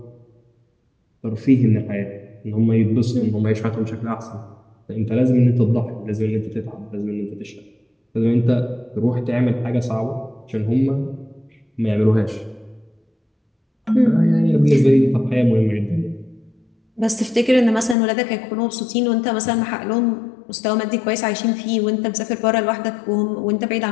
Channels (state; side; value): drops out; right; at 17.9 s